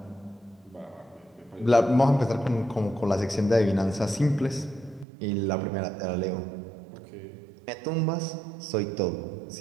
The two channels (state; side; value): drops out; left; at 5.1 s